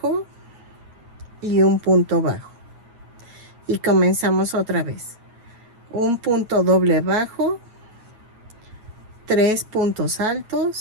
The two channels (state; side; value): late; left; 9.1 ms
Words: y un punto bajo. Y comenzamos otra vez. Un punto doble bajo, 3 puntos